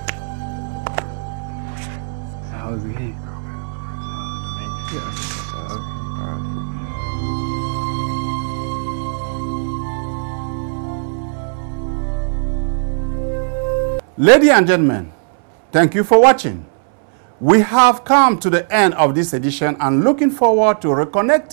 Ladies and gentlemen, thank you for watching. We have come to the end of this edition and looking forward to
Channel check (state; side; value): silent; left; 67 dB below the other